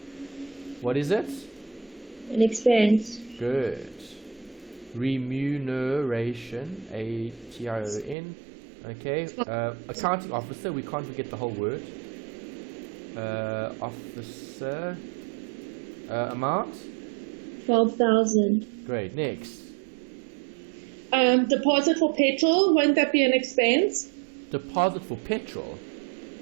What is it? An expense. Good. Remuneration, A-T-I-O-N. Okay, accounting officer, we can't forget the whole word. Officer, amount? 12,000. Great, next. Deposit for petrol, won't that be an expense? Deposit for petrol?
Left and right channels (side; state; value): left; drops out; at 8.2 s